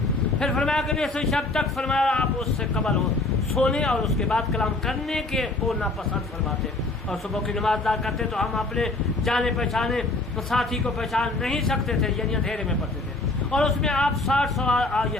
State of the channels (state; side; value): quieter; right; 3.0 dB